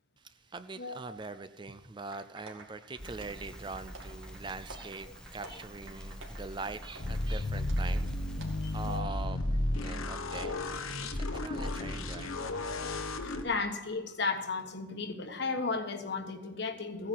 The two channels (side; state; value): both; normal; correlation 0.40